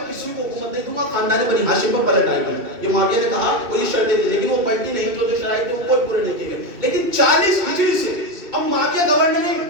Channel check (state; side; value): late; left; 2.7 ms